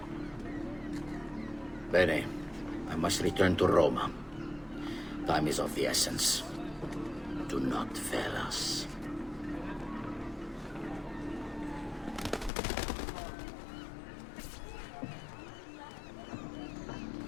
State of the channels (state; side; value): drops out; right; at 12.5 s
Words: Bene, I must return to Roma. Time is of the essence. Do not fail us.